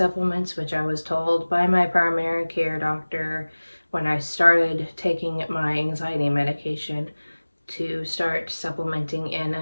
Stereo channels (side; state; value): both; inverted; correlation -1.00